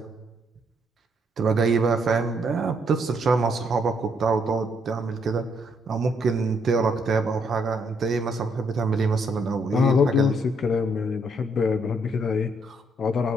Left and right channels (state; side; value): normal; both; correlation 0.72